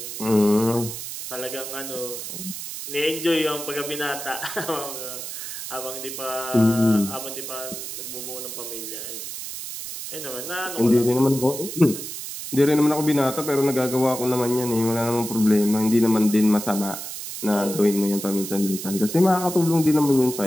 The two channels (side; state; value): right; noise; hiss, 8 dB below the sound